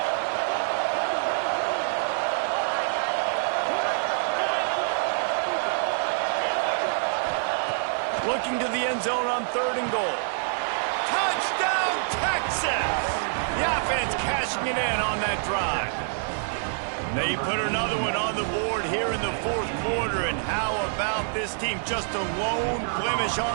Looking to the end zone on 3rd and goal. Touchdown, Texas! The offense cashing it in on that drive. They put another one on the board here in the 4th quarter, and how about this team? Just a lone blemish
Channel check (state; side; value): silent; left; 61 dB below the other